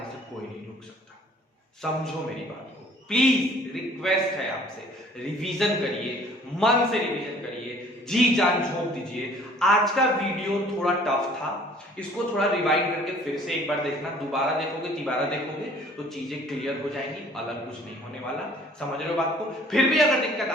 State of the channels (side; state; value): both; normal; correlation 0.55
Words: से कोई नहीं रोक सकता। समझो मेरी बात को, प्लीज रिक्वेस्ट है आपसे, रिवीजन करिए, मन से रिवीजन करिए, जी जान झोंक दीजिए। आज का वीडियो थोड़ा टफ था, इसको थोड़ा रिवाइंड करके फिर से एक बार देखना, दोबारा देखोगे, तिबारा देखोगे तो चीजें क्लियर हो जाएंगी, अलग कुछ नहीं होने वाला। समझ रहे हो बात को? फिर भी अगर दिक्कत